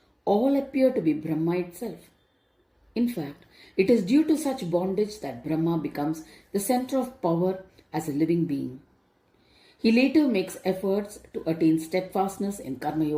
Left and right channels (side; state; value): both; identical; correlation 1.00